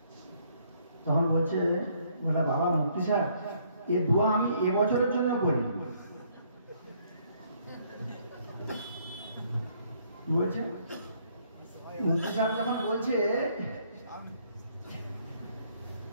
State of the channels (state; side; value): inverted; both; correlation -0.67